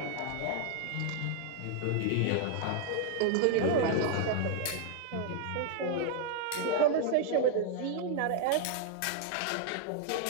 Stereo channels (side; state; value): both; different; correlation 0.00